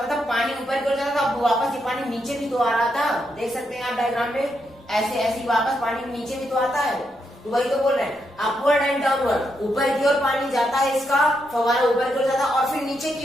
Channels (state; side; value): normal; both; correlation 0.81